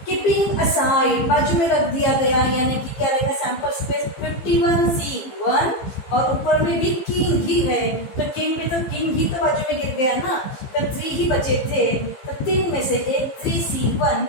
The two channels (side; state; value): right; late; 15 ms